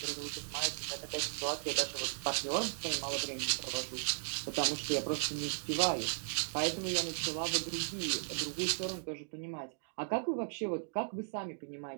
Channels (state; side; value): silent; left; digital silence